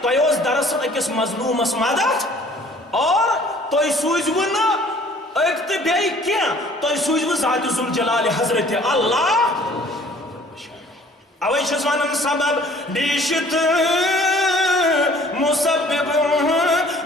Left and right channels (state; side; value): normal; both; correlation 0.54